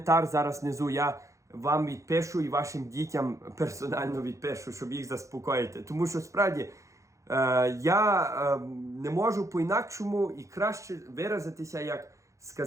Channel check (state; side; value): late; left; 0.15 ms